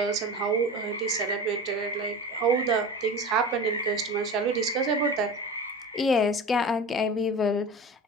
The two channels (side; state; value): both; normal; correlation 0.32